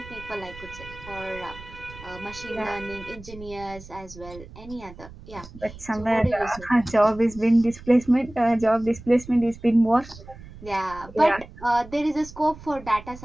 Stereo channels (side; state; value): right; noise; rumble, 17 dB below the sound